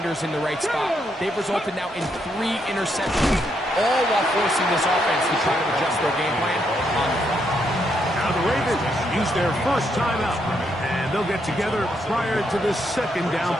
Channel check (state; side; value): normal; both; correlation 0.77